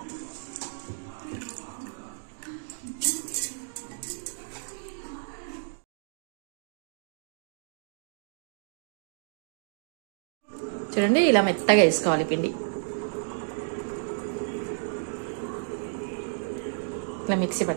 చూడండి, ఇలా మెత్తగా వేసుకోవాలి పిండి. ఇలా మిక్సీ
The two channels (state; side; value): silent; left; digital silence